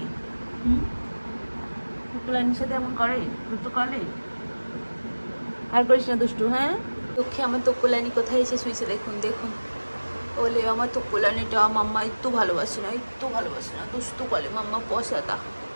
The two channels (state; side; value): inverted; both; correlation -1.00